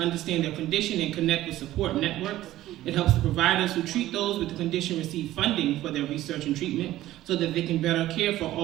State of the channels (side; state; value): left; quieter; 14.8 dB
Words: their condition and connect with support networks. It helps the providers who treat those with the condition receive funding for their research and treatment so that they can better care for